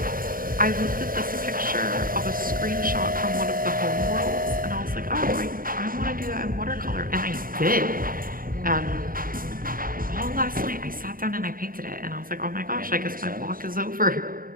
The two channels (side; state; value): left; late; 0.41 ms